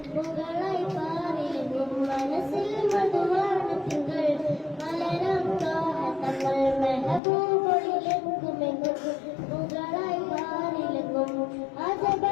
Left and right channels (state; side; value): drops out; right; at 7.2 s